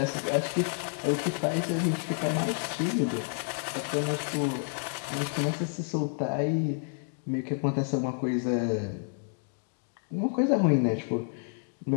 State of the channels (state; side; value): silent; right; 58 dB below the other